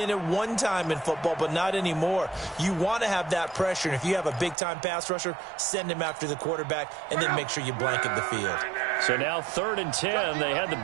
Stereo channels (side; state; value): left; drops out; at 4.5 s